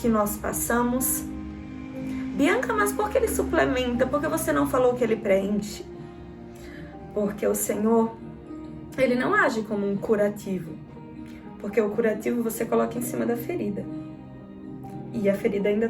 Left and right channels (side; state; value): both; identical; correlation 1.00